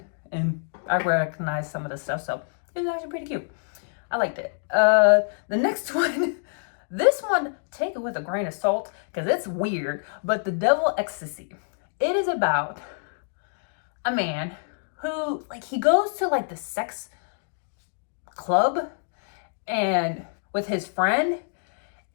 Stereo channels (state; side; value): silent; right; digital silence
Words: and I recognize some of the stuff. So it was actually pretty cute. I liked it. The next one, this one, take it with a grain of salt because it's weird, but The Devil Ecstasy. It is about a man who, like, he goes to like the sex club and with his friend,